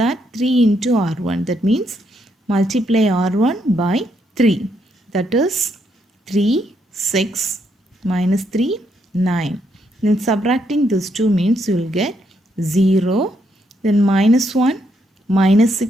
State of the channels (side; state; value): both; normal; correlation 0.76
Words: 3 into R1, that means multiply R1 by 3, that is 3, 6 minus 3, 9. Then subtracting these 2 means you will get 0, then minus 1, minus